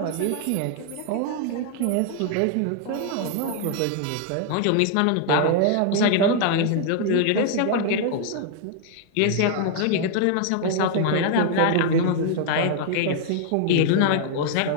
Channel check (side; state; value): both; different; correlation 0.00